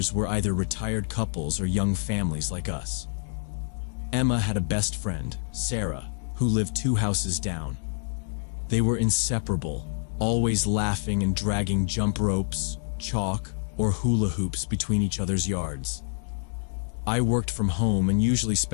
were either retired couples or young families like us. Emma had a best friend, Sarah, who lived 2 houses down. They were inseparable, always laughing and dragging jump ropes, chalk, or hula hoops between each other's yards. I worked from home and usually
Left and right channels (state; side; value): silent; right; 60 dB below the other